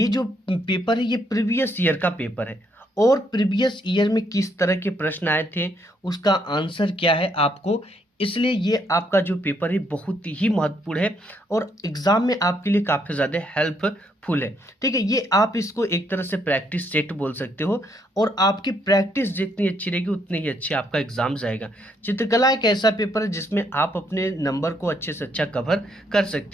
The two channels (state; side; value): normal; both; correlation 0.72